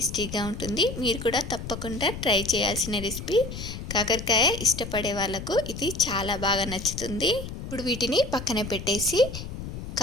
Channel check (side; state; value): left; noise; rumble, 8 dB below the sound